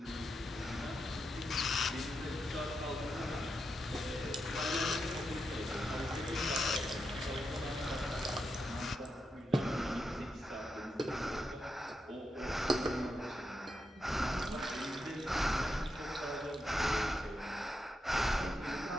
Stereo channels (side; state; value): both; normal; correlation 0.85